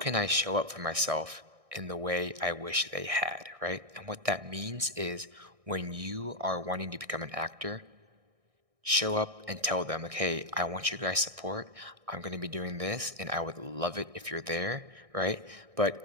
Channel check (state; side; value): late; left; 1.6 ms